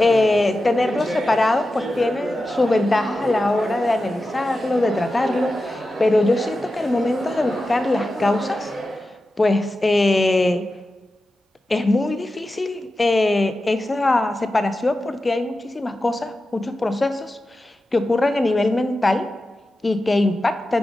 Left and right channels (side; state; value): both; normal; correlation 0.92